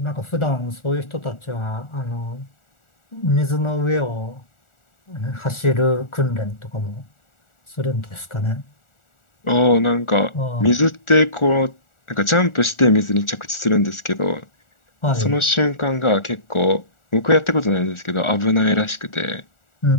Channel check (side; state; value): right; late; 1.4 ms